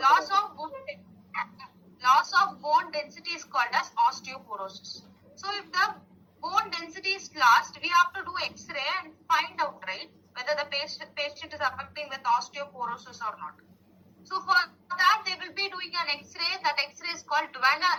Loss of bone density is called as osteoporosis. So if the bone density is lost, we have to do X-ray and find out, right, whether the patient is affecting with osteoporosis or not. So for that, they will be doing an X-ray. That X-ray is called dual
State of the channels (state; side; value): identical; both; correlation 1.00